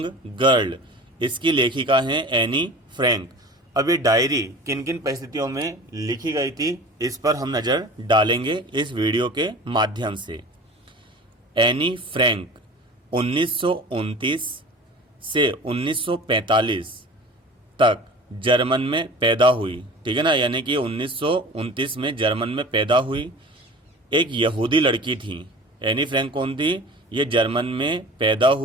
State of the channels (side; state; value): both; normal; correlation 0.38